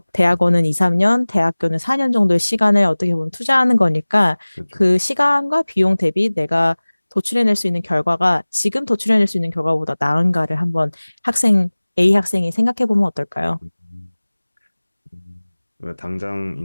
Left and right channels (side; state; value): both; inverted; correlation -1.00